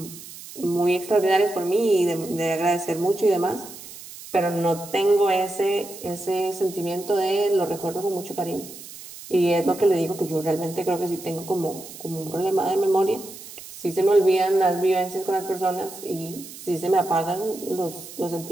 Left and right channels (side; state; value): right; noise; hiss, 15 dB below the sound